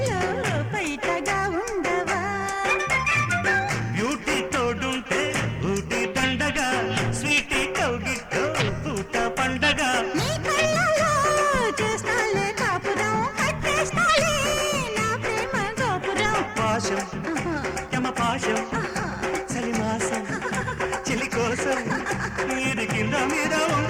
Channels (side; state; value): both; identical; correlation 1.00